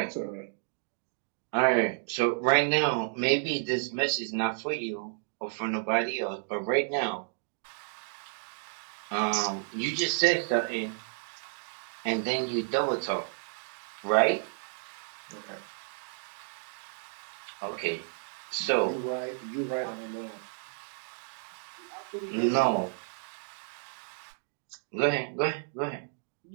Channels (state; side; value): silent; left; digital silence